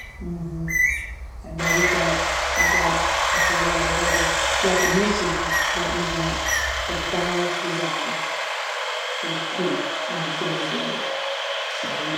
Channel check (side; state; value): both; identical; correlation 1.00